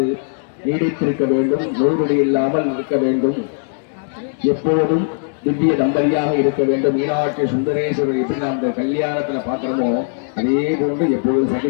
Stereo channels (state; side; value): silent; right; 67 dB below the other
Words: நீடித்திருக்க வேண்டும், நோய்நொடி இல்லாமல் இருக்க வேண்டும், எப்போதும் திவ்ய தம்பதியாக இருக்க வேண்டும். மீனாட்சி சுந்தரேஸ்வரர் எப்படி நாம் இந்த கல்யாணத்துல பார்க்கிறோமோ அதே போன்று எப்போதும்